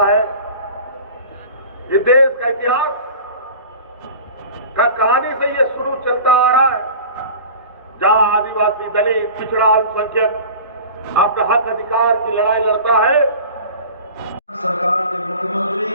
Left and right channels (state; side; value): inverted; both; correlation -0.38